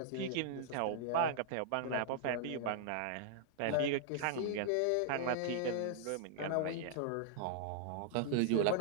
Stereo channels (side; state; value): both; different; correlation -0.01